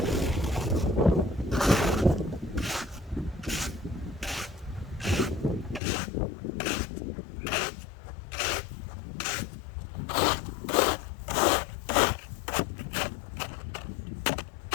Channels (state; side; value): drops out; right; at 5.8 s